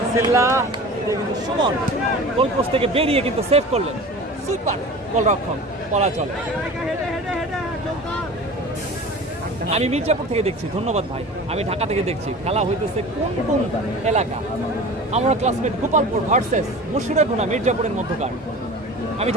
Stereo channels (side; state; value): both; normal; correlation 0.37